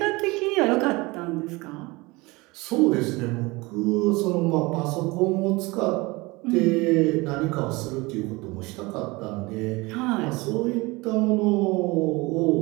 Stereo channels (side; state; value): left; quieter; 23.6 dB